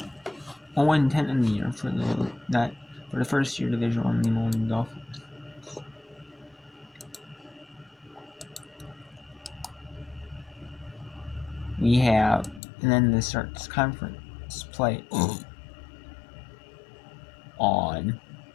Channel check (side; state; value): right; drops out; at 12.6 s